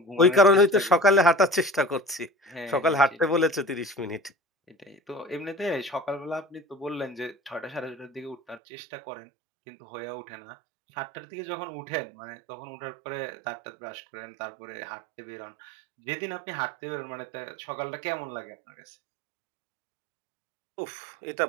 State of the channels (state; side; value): drops out; left; at 8.6 s